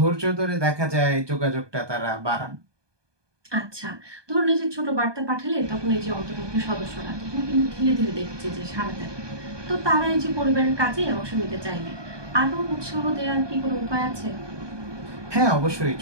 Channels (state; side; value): late; left; 1.2 ms